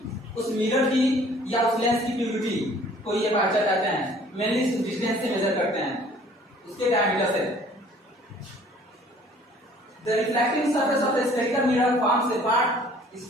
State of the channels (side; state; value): both; normal; correlation 0.54